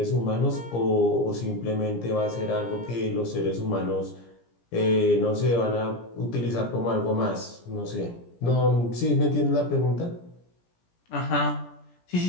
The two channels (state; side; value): late; right; 17 ms